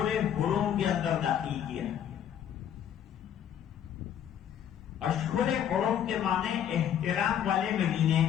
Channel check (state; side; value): quieter; right; 9.5 dB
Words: حرم کے اندر داخل کیا. اشہر حرم کے معنی احترام والے مہینے،